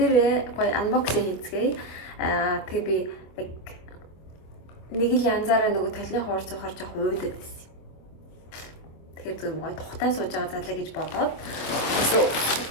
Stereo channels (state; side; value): late; right; 25 ms